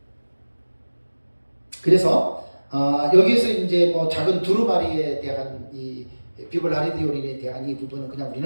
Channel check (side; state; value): both; inverted; correlation -1.00